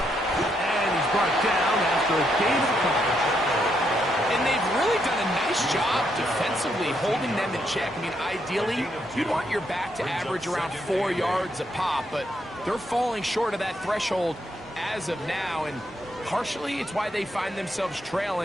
And he's brought down after a gain of a couple. And they've really done a nice job defensively holding them in check. I mean, ideally, you'd want your back to average around 4 yards a pop, but they're falling short of that threshold as of now, and partially it's why they find themselves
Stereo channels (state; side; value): normal; both; correlation 0.77